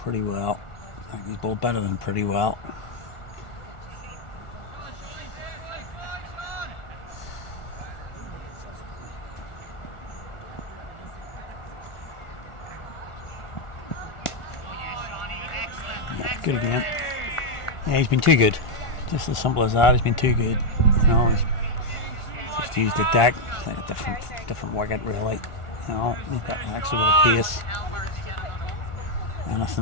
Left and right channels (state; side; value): late; right; 1.4 ms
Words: well. I think he's bowled better than pretty well. Good again. Yeah, he's been too good. Just as simple as that. He's been too good. You know, he's just used the deck. It's like a different wicket, really. You know, he's got actually with a pace.